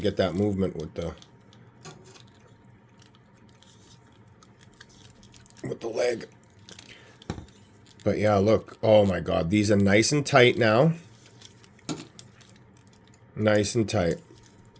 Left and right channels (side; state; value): both; identical; correlation 1.00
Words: that movement with the leg. But yeah, look. Oh my God. These are nice and tight now. Nice and tight.